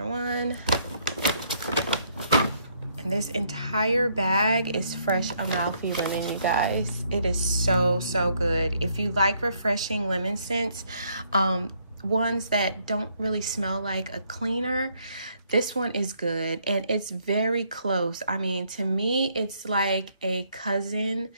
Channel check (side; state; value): both; inverted; correlation -0.70